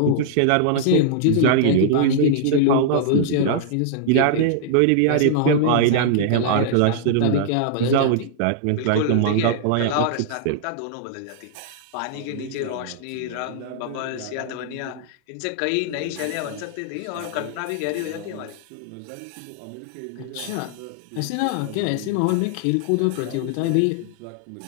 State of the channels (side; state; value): both; different; correlation -0.01